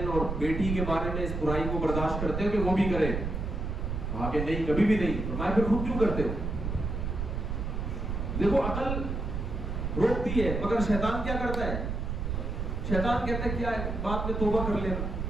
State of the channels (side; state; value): right; noise; rumble, 3 dB below the sound